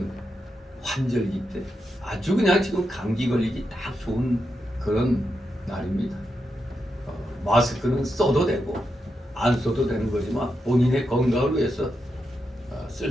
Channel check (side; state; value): both; normal; correlation 0.85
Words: 환절기 때 아주 그냥 지금 감기 걸리기 딱 좋은 그런 날입니다. 마스크는 써도 되고 안 써도 되는 거지만 본인의 건강을 위해서 쓸